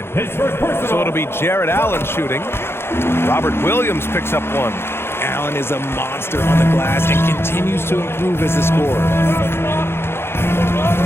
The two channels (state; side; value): late; right; 0.12 ms